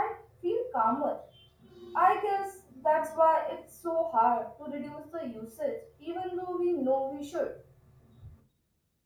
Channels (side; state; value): both; identical; correlation 1.00